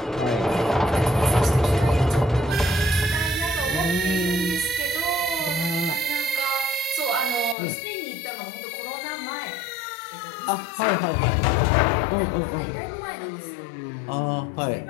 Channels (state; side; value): drops out; right; at 7.6 s